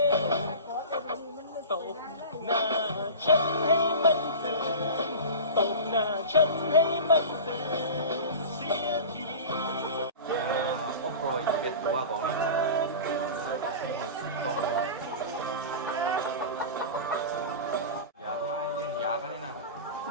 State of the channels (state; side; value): inverted; both; correlation -0.32